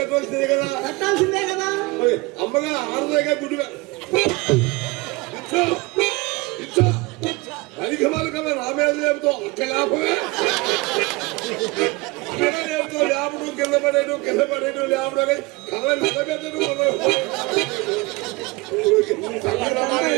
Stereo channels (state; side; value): quieter; left; 24.3 dB